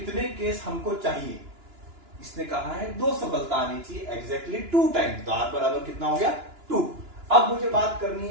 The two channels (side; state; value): left; late; 2.9 ms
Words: केस हमको चाहिए। इसने कहा है 2 सफलता आनी चाहिए, एग्जैक्टली 2 टाइम्स, तो r बराबर कितना हो गया 2। अब मुझे बात करनी